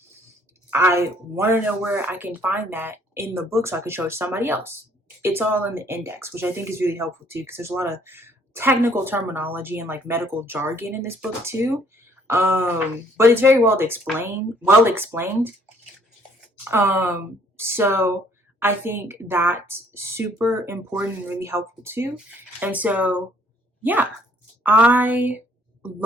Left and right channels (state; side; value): normal; both; correlation 0.62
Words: I want to know where I can find that in the book so I can show it to somebody else. It's all in the index, which I think is really helpful too, because there's a lot of technical terminology and like medical jargon in this book too. But it's very well explained. So I think that's super important and really helpful too. And so, yeah, I